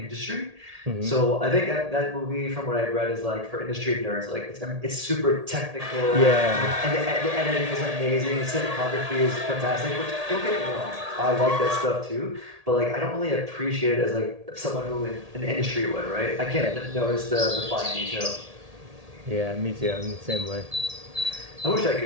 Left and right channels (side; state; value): left; late; 1.8 ms